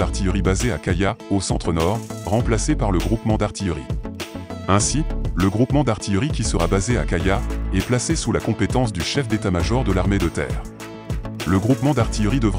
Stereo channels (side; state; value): both; identical; correlation 1.00